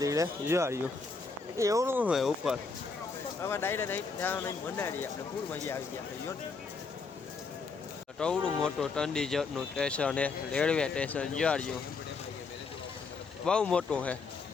ધીરે જો આવ્યું એવું હોય ઉપર હવે ડાયરેક્ટ અહીં ત્યાં નહીં મનાડી આપણે ફૂલ મજા આવી ગયા છે ટવડું મોટું ચંડીગઢનું સ્ટેશન હે રેલવે સ્ટેશન જોડ્યું બહુ મોટું છે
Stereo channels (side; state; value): right; quieter; 4.5 dB